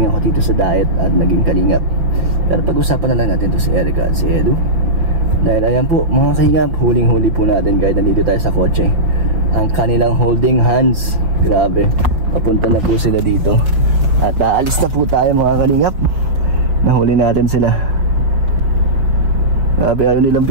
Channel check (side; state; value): left; late; 6.1 ms